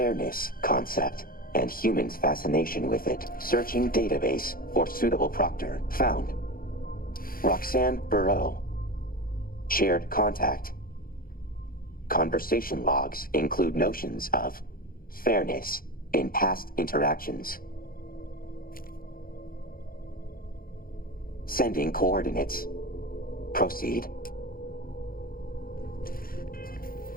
concept and humans' fascination with it. Searching database for suitable proctor. Found. Roxanne Burrow. Shared contact. Conversation logs include notions of fairness in past interactions. Sending coordinates. Proceed.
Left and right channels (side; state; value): right; late; 0.42 ms